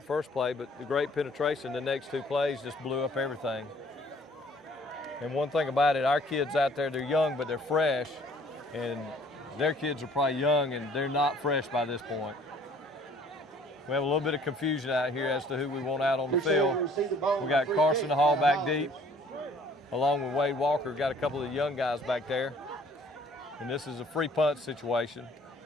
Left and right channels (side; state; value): both; normal; correlation 0.56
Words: first play, but the great penetration, the next 2 plays just blew up everything. And one thing about it, our kids out there, they're young, but they're fresh, and their kids are probably young, and they're not fresh by this point. We have a little bit of confusion out here as to who we want out on the field. We got Carson Hall back deep, along with Wade Walker. Got a couple of young guys back there. And this is a free punt situation.